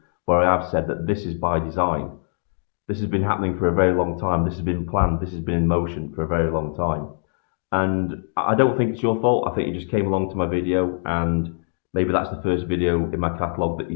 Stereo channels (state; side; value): silent; right; 63 dB below the other